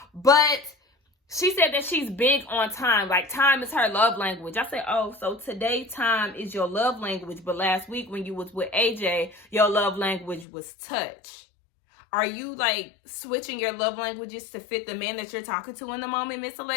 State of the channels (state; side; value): drops out; right; at 10.5 s